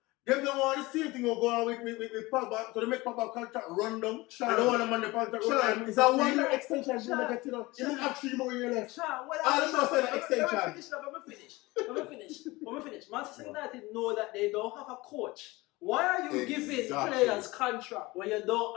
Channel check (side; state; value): right; quieter; 21.5 dB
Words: Them don't want the same thing will go on with Pogba, so they make Pogba contract run down. I don't want them on the contract run down. It's a 1 year extension. Bruno get, you know. You don't have 3 more years left. Let me finish. Manchester United know that they don't have a coach. Why are you giving players contract when you don't